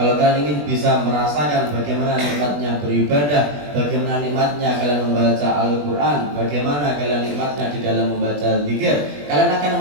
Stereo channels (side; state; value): left; late; 21 ms